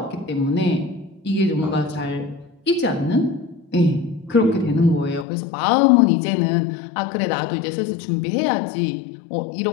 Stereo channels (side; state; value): right; drops out; at 5.2 s